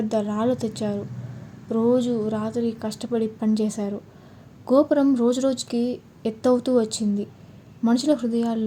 రాళ్ళు తెచ్చారు. రోజు రాత్రి కష్టపడి పనిచేశారు. గోపురం రోజురోజుకి ఎత్తవుతూ వచ్చింది. మనుషుల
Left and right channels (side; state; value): both; identical; correlation 1.00